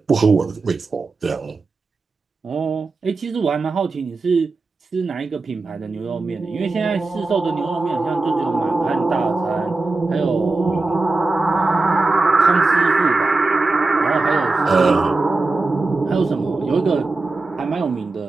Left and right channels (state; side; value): quieter; left; 3.5 dB